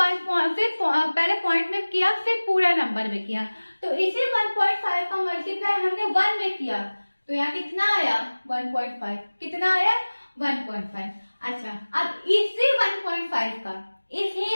पॉइंट में किया, फिर पूरा नंबर में किया। तो इसी 1.5 का मल्टीप्लाई हमने 1 में किया, तो यहाँ कितना आया 1.5, कितना आया 1.5। अच्छा, अब इसी 1.5 का, इसी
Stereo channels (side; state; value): both; inverted; correlation -1.00